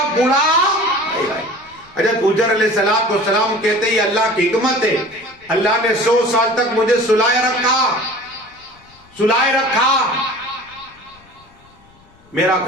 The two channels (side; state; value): left; noise; rumble, 29 dB below the sound